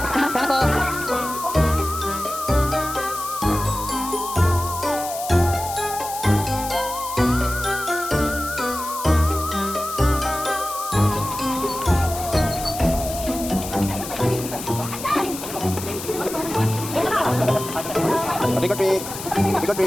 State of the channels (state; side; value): noise; left; hiss, 9 dB below the sound